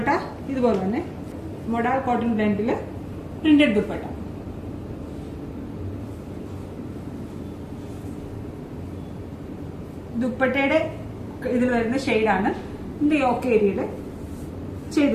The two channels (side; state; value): both; identical; correlation 1.00